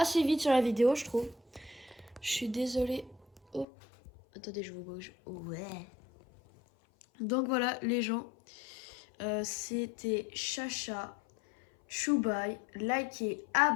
vite sur la vidéo, je trouve. Je suis désolée. Oh. Attendez, je vous bouge. Ouais. Donc voilà, les gens. C'était Chacha. Chou bye, likez,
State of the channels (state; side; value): drops out; right; at 3.7 s